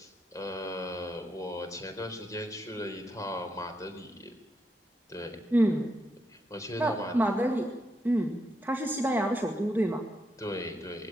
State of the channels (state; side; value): normal; both; correlation 0.81